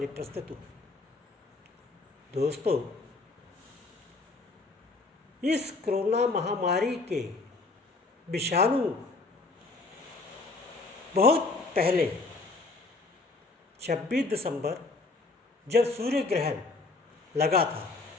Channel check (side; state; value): right; quieter; 3.5 dB